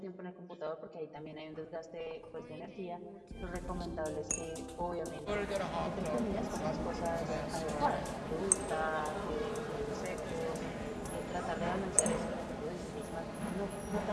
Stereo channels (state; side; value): identical; both; correlation 1.00